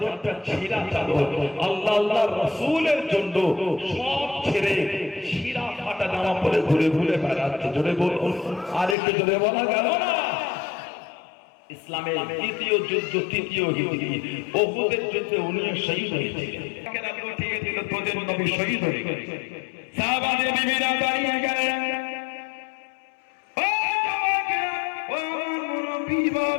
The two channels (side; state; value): right; drops out; at 9.0 s